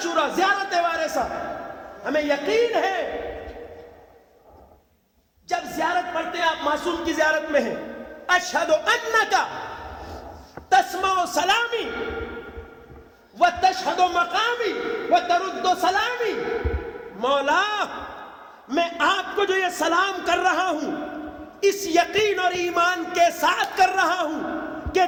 زیارت وارثہ. ہمیں یقین ہے جب زیارت پڑھتے ہیں آپ معصوم کی زیارت میں ہیں، اشہد انک تسمع سلامی وتشہد مقامی وترد سلامی. مولا میں آپ کو جو یہ سلام کر رہا ہوں اس یقین اور ایمان کے ساتھ کر رہا ہوں کہ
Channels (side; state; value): both; identical; correlation 1.00